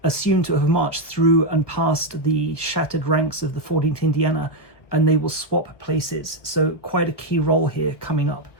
assumed to have marched through and past the shattered ranks of the 14th Indiana, and they will swap places. So quite a key role here coming up,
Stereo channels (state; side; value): late; right; 1.4 ms